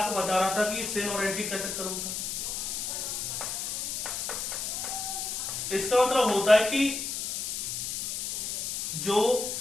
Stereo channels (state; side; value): noise; left; hiss, 3 dB below the sound